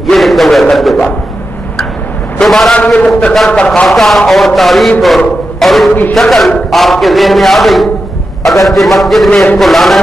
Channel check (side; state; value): both; normal; correlation 0.90